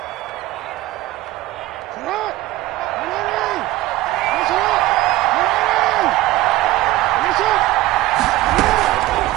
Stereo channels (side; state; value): left; quieter; 17.0 dB